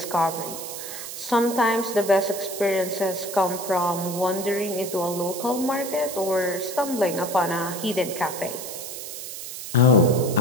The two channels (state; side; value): noise; right; hiss, 9 dB below the sound